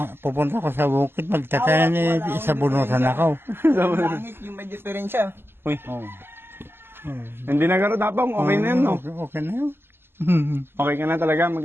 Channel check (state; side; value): late; left; 0.11 ms